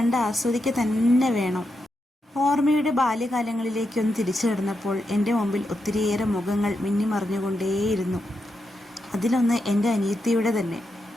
ആസ്വദിക്കുക തന്നെ വേണം. ഓർമ്മയുടെ ബാല്യകാലങ്ങളിലേക്കൊന്ന് തിരിച്ചു കിടന്നപ്പോൾ എൻ്റെ മുമ്പിൽ ഒത്തിരിയേറെ മുഖങ്ങൾ മിന്നിമറിഞ്ഞുകൊണ്ടേയിരുന്നു. അതിലൊന്ന് എൻ്റെ അനിയത്തിയുടെ തന്നെ.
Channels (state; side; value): normal; both; correlation 0.85